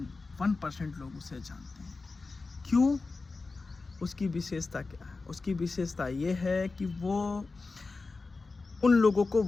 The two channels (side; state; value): right; quieter; 3.9 dB